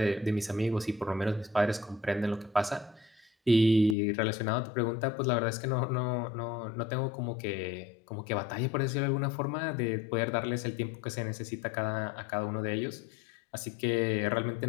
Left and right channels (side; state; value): right; drops out; at 4.0 s